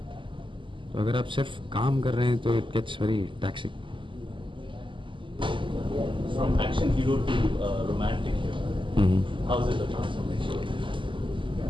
तो अगर आप सिर्फ काम कर रहे हैं तो it gets very taxing. From action hero to romantic hero. How is it the transformation?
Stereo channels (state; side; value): late; left; 0.24 ms